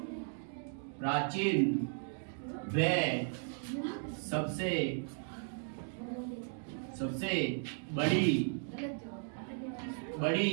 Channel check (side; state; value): left; silent; 54 dB below the other